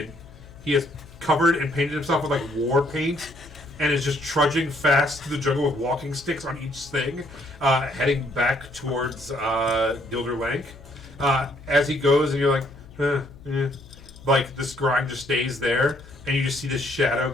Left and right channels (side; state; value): left; noise; hum, 20 dB below the sound